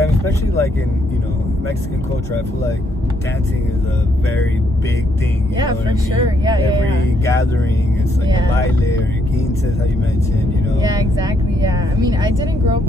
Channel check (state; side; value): normal; both; correlation 0.73